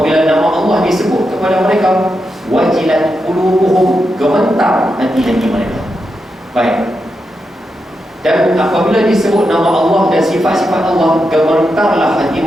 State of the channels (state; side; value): normal; both; correlation 0.86